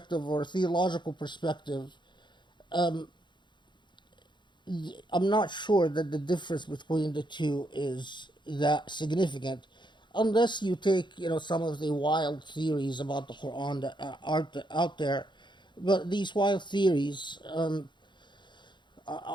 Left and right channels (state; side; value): late; right; 0.22 ms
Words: or a theological perspective. I'm not sure that the difference between the two is that significant, unless you take, some of the wild theories about the Quran that are out there. But these wild theories